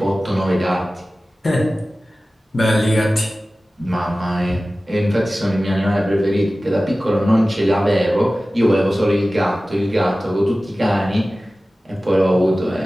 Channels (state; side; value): normal; both; correlation 0.96